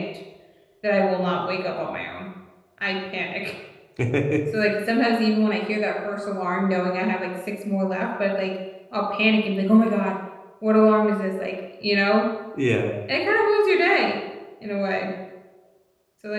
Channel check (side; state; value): both; identical; correlation 1.00